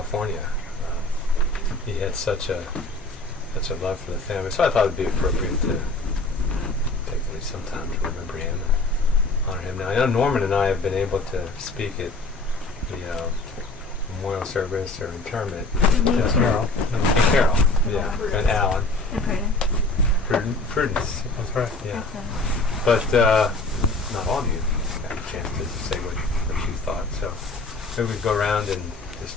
He had such a love for the family, so I thought it'd be appropriate to take at least some time to remember him and honor him. Now, I know Norman and I have been able to speak at the memorial service or interment. Carol. Carol, yeah, and Alan. And Prudence. That's right. Yeah. But not all of you got a chance to say what you thought. So maybe we go around and just,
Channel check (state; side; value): quieter; right; 3.0 dB